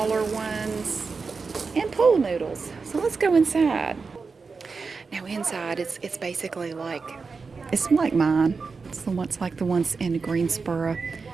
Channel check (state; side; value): quieter; left; 4.7 dB